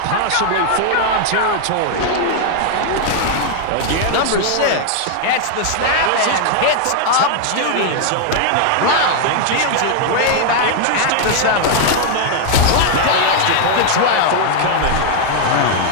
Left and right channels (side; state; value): both; different; correlation 0.00